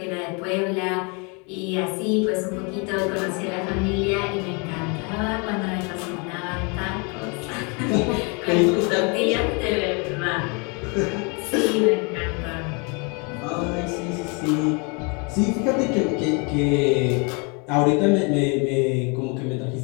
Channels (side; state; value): right; quieter; 32.9 dB